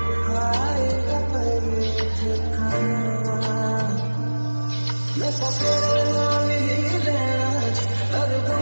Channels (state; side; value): inverted; both; correlation -1.00